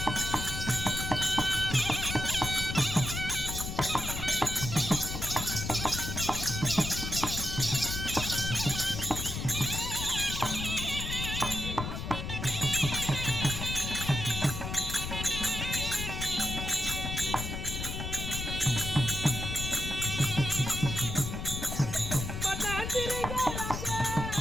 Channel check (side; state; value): left; noise; rumble, 5 dB below the sound